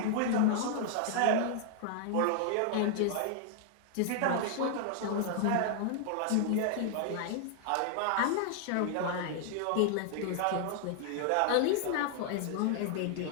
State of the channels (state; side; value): different; both; correlation 0.00